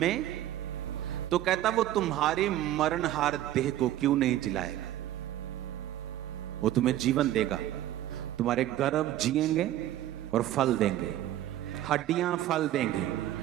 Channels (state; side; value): quieter; left; 13.3 dB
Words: तो कहता वो तुम्हारी मरणहार देह को क्यों नहीं जिलाएगा? वो तुम्हें जीवन देगा, तुम्हारे गर्भ जिएंगे और फल देंगे, हड्डियां फल देंगे,